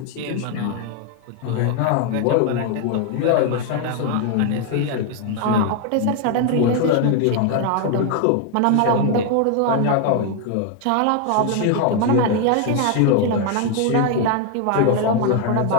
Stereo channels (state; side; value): different; both; correlation 0.01